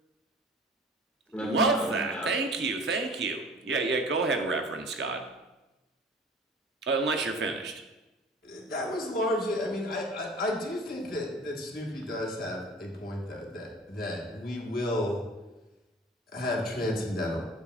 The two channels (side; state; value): both; normal; correlation 0.43